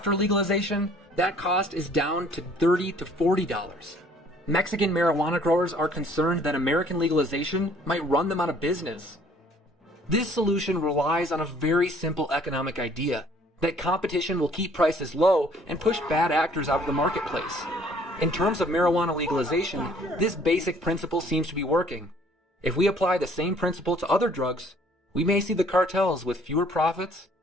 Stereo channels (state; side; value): normal; both; correlation 0.58